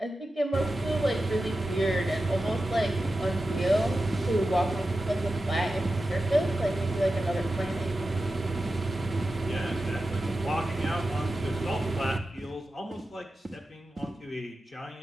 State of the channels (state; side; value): normal; both; correlation 0.92